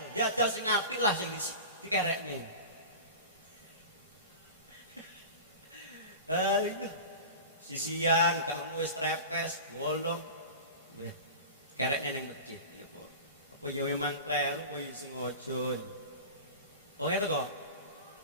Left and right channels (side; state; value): both; inverted; correlation -0.33